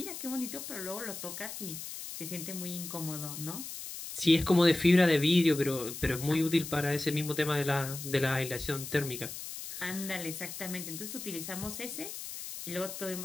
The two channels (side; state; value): left; noise; hiss, 9 dB below the sound